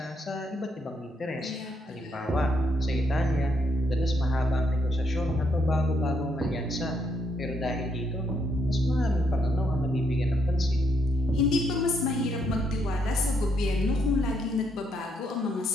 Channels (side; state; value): both; normal; correlation 0.75